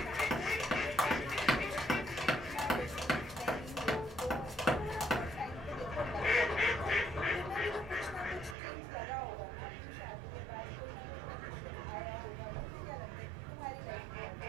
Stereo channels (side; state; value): left; drops out; at 8.6 s